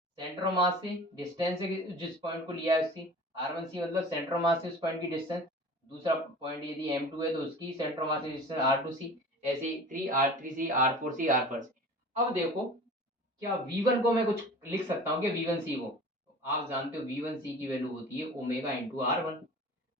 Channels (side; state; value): both; normal; correlation 0.40